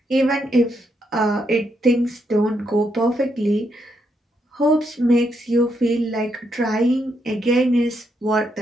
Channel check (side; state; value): both; normal; correlation 0.79